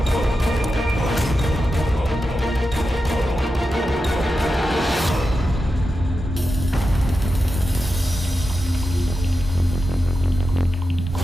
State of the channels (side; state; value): both; normal; correlation 0.90